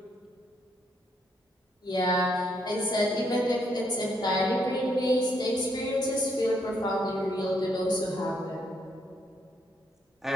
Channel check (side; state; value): both; normal; correlation 0.74